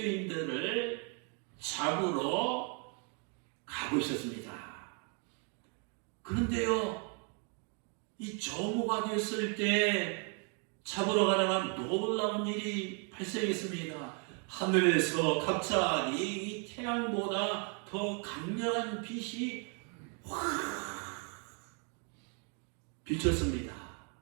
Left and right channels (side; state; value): left; quieter; 38.3 dB